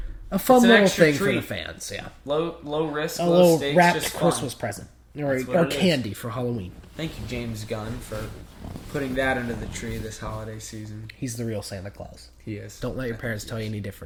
a fun little thing for the fans. Yeah. Low risk, a low little stakes, wrapped just Christmas fun. present or candy for Halloween. Thank you, James Gunn, for putting that under the tree this holiday season. He's the real Santa Claus. He is. Don't let your parents tell you any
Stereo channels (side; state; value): both; identical; correlation 1.00